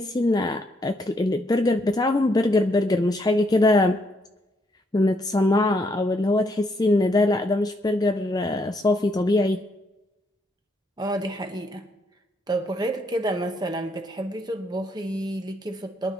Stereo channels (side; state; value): both; normal; correlation 0.73